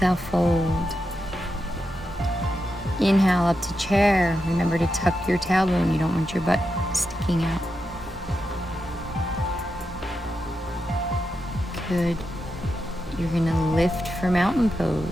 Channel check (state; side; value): normal; both; correlation 0.87